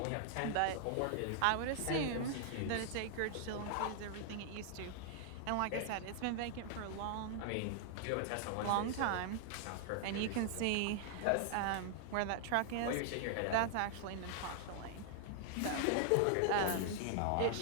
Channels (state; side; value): different; both; correlation 0.00